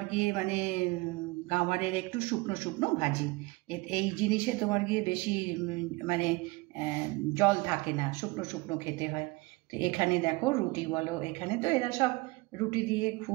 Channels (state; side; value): quieter; left; 23.8 dB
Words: গিয়ে মানে গাওয়ারের একটু শুকনো শুকনো ভাজি, এই জিনিসে তোমার গিয়ে বেশি মানে জল থাকে না, শুকনো শুকনো খেতে হয়। তো এখানে দেখো রুটি বলো, এখানে তো এরা সব রুটি দিয়ে